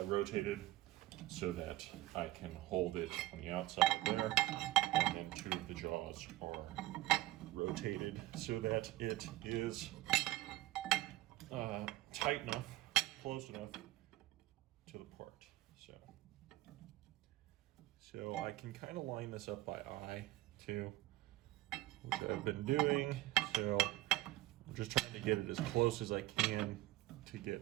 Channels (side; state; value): left; quieter; 17.1 dB